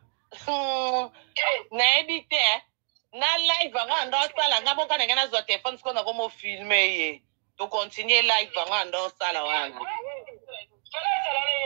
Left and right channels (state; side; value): silent; left; 60 dB below the other